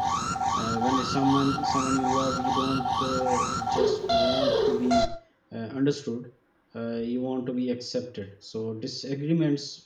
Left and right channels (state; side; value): identical; both; correlation 1.00